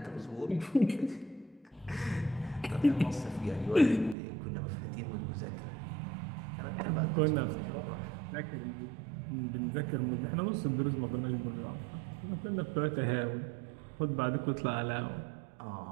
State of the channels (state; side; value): drops out; left; at 4.2 s